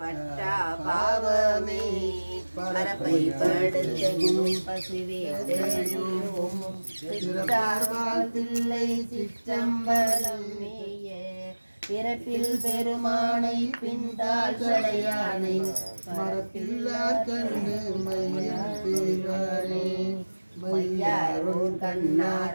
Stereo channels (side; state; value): both; inverted; correlation -1.00